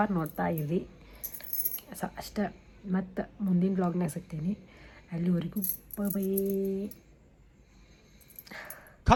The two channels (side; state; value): both; identical; correlation 1.00